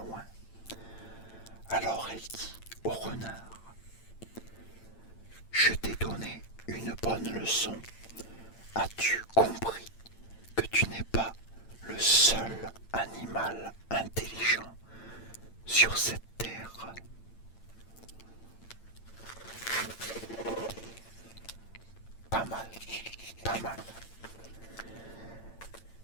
Alors elle dit au renard: je t'ai donné une bonne leçon. As-tu compris que tu n'es pas le seul animal intelligent sur cette terre? Pas mal, pas mal.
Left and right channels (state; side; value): late; right; 8.9 ms